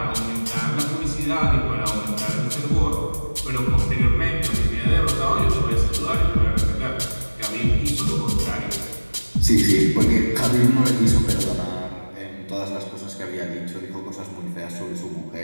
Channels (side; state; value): both; inverted; correlation -1.00